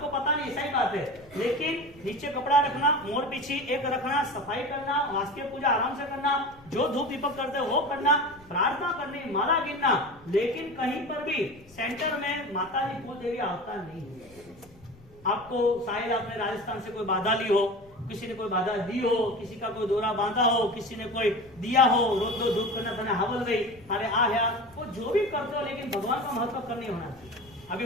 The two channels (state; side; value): noise; left; rumble, 25 dB below the sound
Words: पता नहीं, सही बात है। लेकिन नीचे कपड़ा रखना, मोड़ पीछे एक रखना, सफाई करना, वास्तव पूजा आराम से करना, जो धूप दीपक करते वो करना, प्रार्थना करनी, माला गिनना, लेकिन कहीं पर भी सेंटर में माता जी कुल देवी आवता नहीं है। आपको शायद आपने राजस्थान से कोई बाधा ली हो, किसी ने कोई बाधा दी हो, किसी का कोई दौरा बांधा हो, किसी ने कोई दिया हो, रोज दो धूप करना था, हवल गई, अरे आ वो जो भी करते हो, लेकिन भगवान का महत्व करनी होना चाहिए। अभी